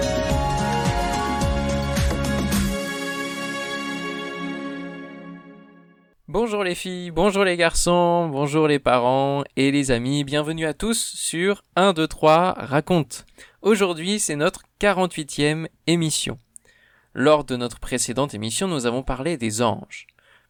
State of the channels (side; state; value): both; identical; correlation 1.00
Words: Bonjour les filles, bonjour les garçons, bonjour les parents et les amis, bienvenue à tous sur 1, 2, 3, raconte. Aujourd'hui c'est notre 48e émission. Lors de notre précédente émission, nous avons parlé des anges.